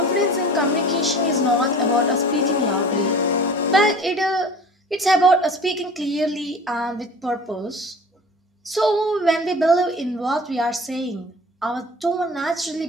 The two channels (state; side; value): normal; both; correlation 0.42